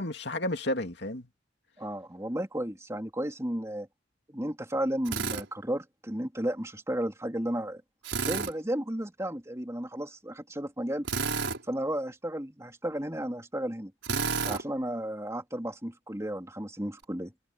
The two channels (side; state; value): both; normal; correlation 0.62